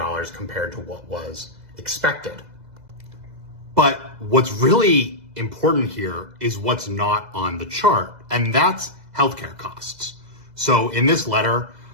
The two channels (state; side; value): late; left; 2.0 ms